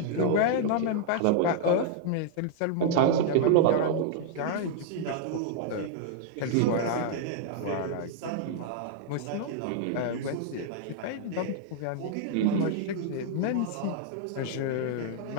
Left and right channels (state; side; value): different; both; correlation -0.01